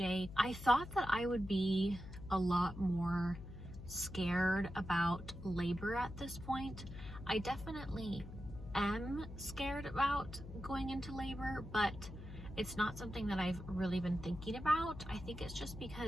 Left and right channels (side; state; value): left; noise; hum, 12 dB below the sound